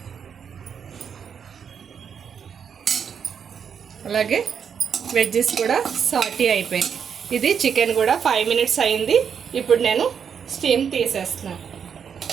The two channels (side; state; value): left; quieter; 7.2 dB